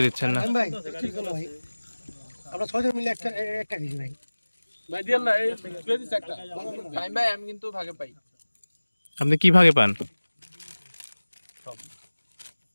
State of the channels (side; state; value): both; inverted; correlation -1.00